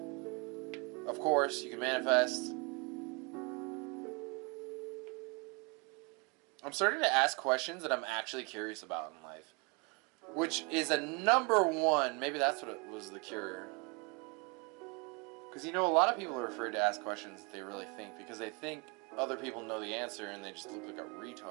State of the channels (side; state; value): left; quieter; 30.2 dB